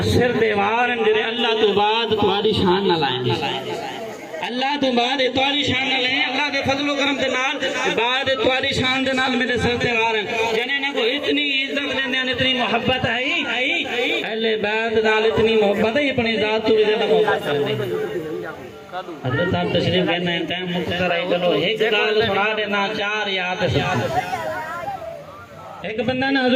سر دیوار جڑے اللہ تو بعد تمہاری شان نہ لائیں اللہ تو بعد تمہاری شان نہ لائیں اللہ دے فضل و کرم دے نال بعد تمہاری شان دے نال میرے سر دیوار ہیں جنے نے کو اتنی عزت دیندے ہیں اتنی محبت ہے اہل بیت نال اتنی محبت ہے اپنی ذات تو بھی زیادہ محبت کرتے حضرت صاحب تشریف کہنا ہے ٹائم مختصر ہے چلو ایک گل سنا دینا چار یاد ایک بندہ نے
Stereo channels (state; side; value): identical; both; correlation 1.00